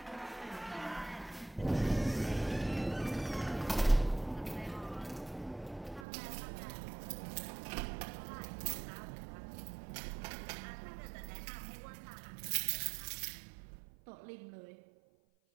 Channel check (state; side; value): drops out; left; at 6.1 s